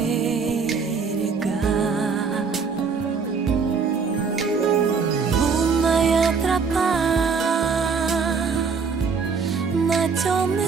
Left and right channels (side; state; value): left; quieter; 5.4 dB